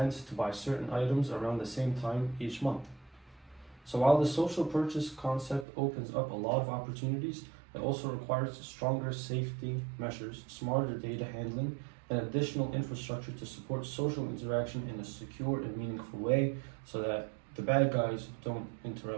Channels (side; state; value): left; drops out; at 5.7 s